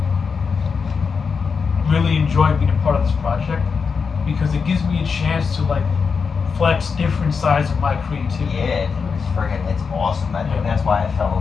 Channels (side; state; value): right; quieter; 5.5 dB